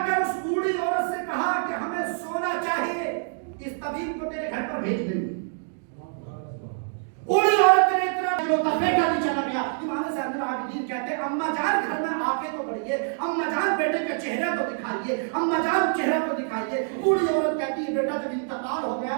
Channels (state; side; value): silent; left; digital silence